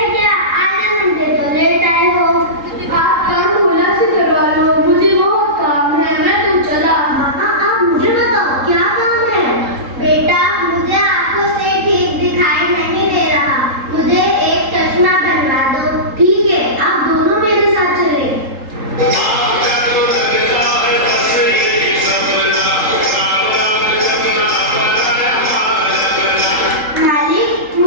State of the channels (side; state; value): left; late; 3.7 ms